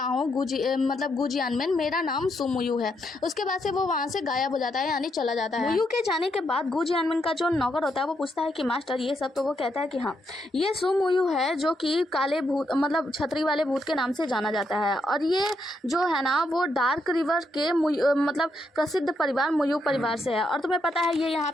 हूँ मतलब गुजियानमेन, मेरा नाम सुमुयू है। उसके बाद से वो वहाँ से गायब हो जाता है, यानी चला जाता है। सुमुयू के जाने के बाद गुजियानमेन का जो नौकर होता है वो पूछता है कि मास्टर ये सब, तो वो कहता है कि हाँ, ये सुमुयू है जो कि काले भूत मतलब छतरी वाले भूत के नाम से जाना जाता है। और ये जो है ना, वो डार्क रिवर के मतलब प्रसिद्ध परिवार मुयू परिवार से है। और तुम्हें पता है ये यहाँ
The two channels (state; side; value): normal; both; correlation 0.79